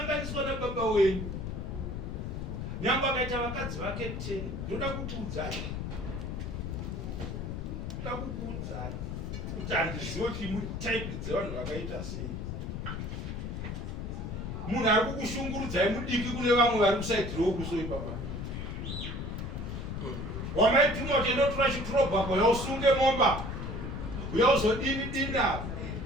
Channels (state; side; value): noise; left; rumble, 5 dB below the sound